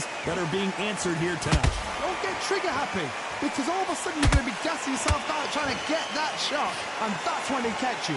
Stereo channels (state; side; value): identical; both; correlation 1.00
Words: that are being answered here tonight. Don't get trigger happy because all of a sudden you're going to be gassing yourself out trying to get that shot, and that's when they catch you.